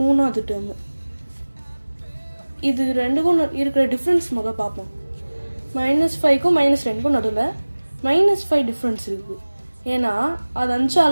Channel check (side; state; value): both; inverted; correlation -1.00